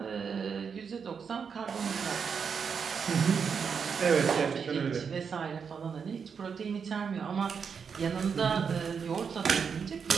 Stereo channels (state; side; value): quieter; left; 6.3 dB